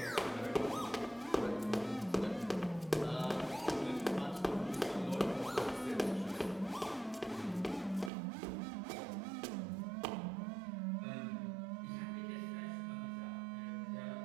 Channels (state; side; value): drops out; left; at 8.1 s